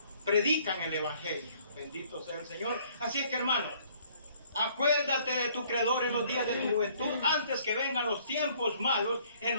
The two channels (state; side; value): inverted; both; correlation -0.60